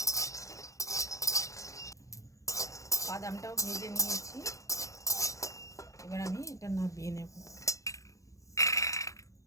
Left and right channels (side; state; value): right; late; 0.15 ms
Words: বাদামটাও ভেজে নিয়েছি, এবার আমি এটা নামিয়ে নেব।